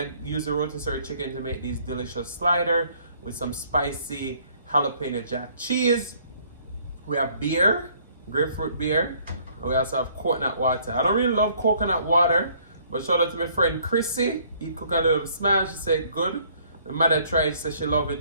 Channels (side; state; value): both; inverted; correlation -0.61